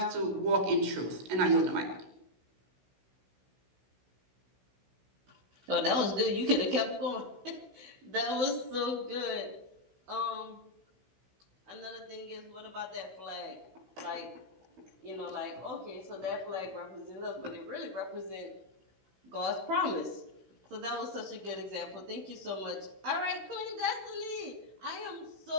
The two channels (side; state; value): left; late; 16 ms